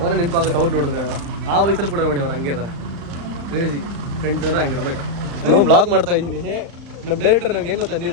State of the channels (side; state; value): left; late; 35 ms